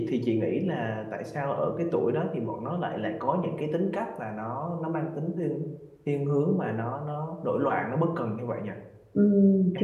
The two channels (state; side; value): identical; both; correlation 1.00